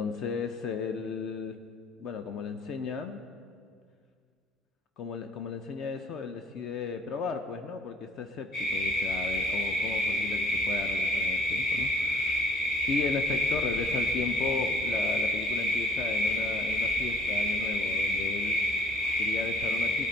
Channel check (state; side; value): normal; both; correlation 0.55